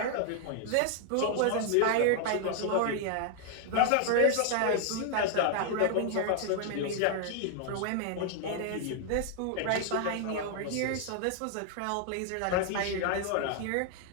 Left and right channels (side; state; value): both; different; correlation 0.00